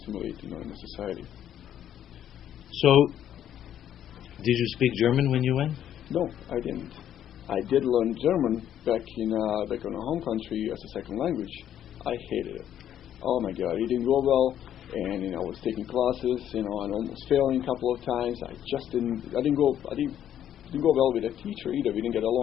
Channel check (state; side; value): quieter; right; 10.5 dB